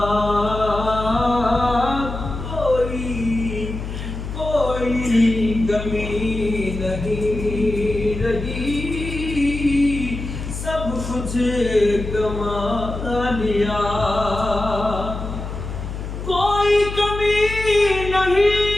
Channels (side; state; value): left; noise; hum, 7 dB below the sound